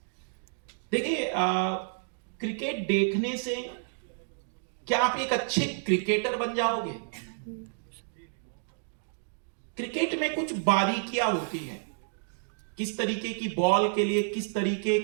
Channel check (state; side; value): silent; left; digital silence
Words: देखिए, क्रिकेट देखने से क्या आप एक अच्छे क्रिकेटर बन जाओगे? क्रिकेट में कुछ बारीकियां होती है, किस तरीके की बॉल के लिए किस तरीके